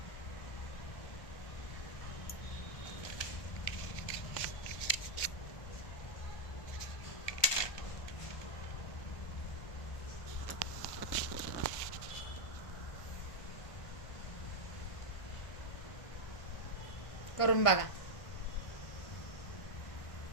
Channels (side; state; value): right; late; 1.2 ms